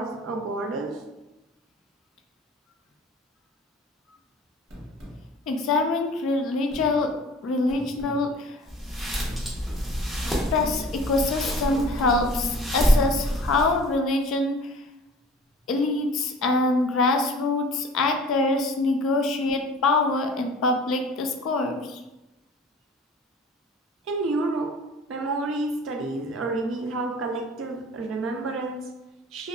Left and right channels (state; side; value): normal; both; correlation 0.45